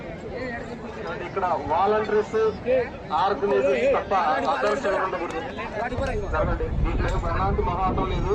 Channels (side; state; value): both; identical; correlation 1.00